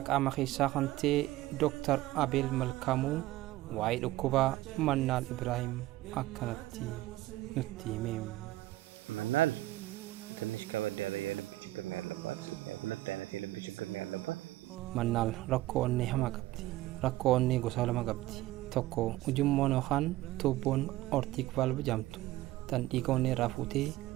qaama keessaa kan ta'e Dr. Abeel Malkaamuu waa'ee dhukkuba Mannaal Ibraahim akkanatti nutti himeem መናል ትንሽ ከበድ ያለ የልብ ችግር ነው ያለባት ሁለት አይነት የልብ ችግር ነው ያለባት Mannaal rakkoo onnee hamaa qabdi rakkoo onnee gosa lama qabdi tokko ujummoon yookaan tuubboon ortiik valve jedhamtu tan dhiiga onnee irraa fuutee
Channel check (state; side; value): quieter; left; 16.8 dB